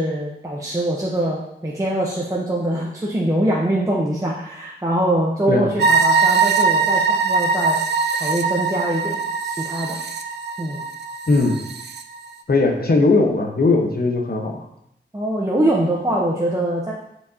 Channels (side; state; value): both; normal; correlation 0.47